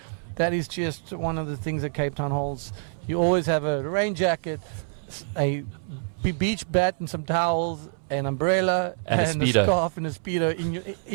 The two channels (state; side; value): silent; left; 61 dB below the other